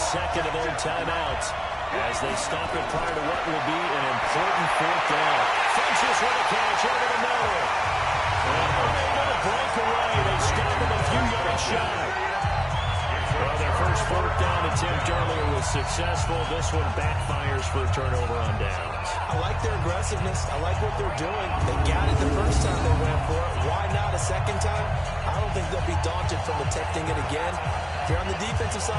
of their timeouts as they stop it prior to what will be an important 4th down. Funchess with a catch over the middle. And unable to break away. They stop him a few yards shy. Well, their first 4th down attempt earlier was successful. This one backfires for a turnover on downs. I like their aggressiveness. I like what they're doing. They got it the first time they went for it. Why not a second time? I don't think they'll be daunted from attempting it again. If you're on the defensive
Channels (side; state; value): both; identical; correlation 1.00